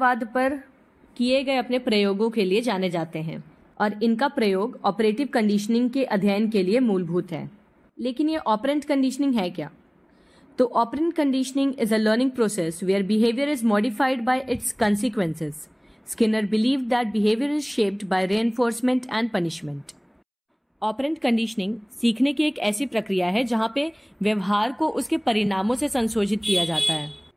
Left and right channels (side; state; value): both; identical; correlation 1.00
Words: पर किए गए अपने प्रयोगों के लिए जाने जाते हैं और इनका प्रयोग ऑपरेटिव कंडीशनिंग के अध्ययन के लिए मूलभूत है। लेकिन ये ऑपरेंट कंडीशनिंग है क्या? तो operant conditioning is a learning process where behavior is modified by its consequences. Skinner believed that behavior is shaped by reinforcement and punishment. Operant conditioning सीखने की एक ऐसी प्रक्रिया है जहां पे व्यवहार को उसके परिणामों से संशोधित किया जाता है।